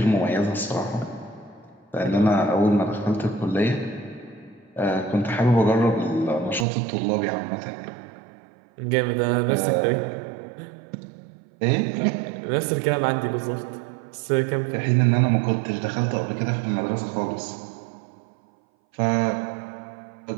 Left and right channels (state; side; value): drops out; left; at 6.7 s